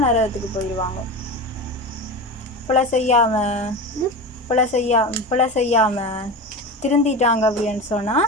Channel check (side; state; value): both; normal; correlation 0.26